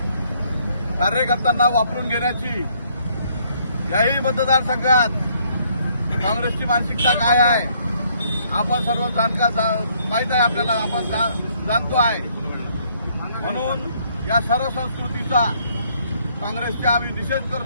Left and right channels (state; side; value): inverted; both; correlation -0.67